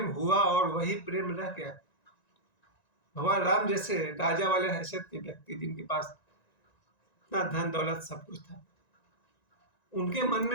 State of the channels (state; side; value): late; right; 1.9 ms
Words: हुआ और वही प्रेम रह गया। भगवान राम जैसे राजा वाले हैसियत के व्यक्ति, जिनके पास इतना धन दौलत सब कुछ था, उनके मन